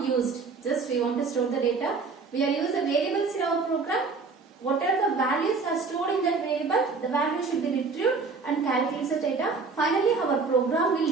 used. Just we want to store the data. We are using the variables in our program. Whatever the values are stored in that variable, the value should be retrieved and calculates the data. Finally, our program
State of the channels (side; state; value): left; quieter; 4.5 dB